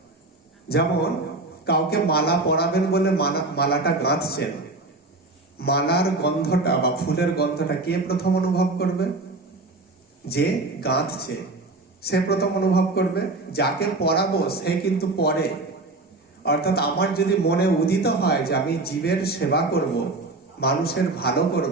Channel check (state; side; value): quieter; left; 3.1 dB